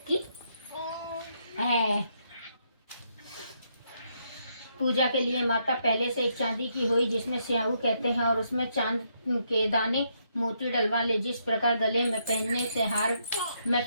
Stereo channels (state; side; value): inverted; both; correlation -0.76